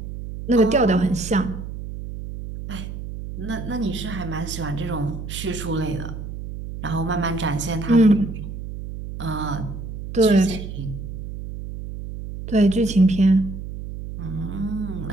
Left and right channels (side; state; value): right; noise; hum, 9 dB below the sound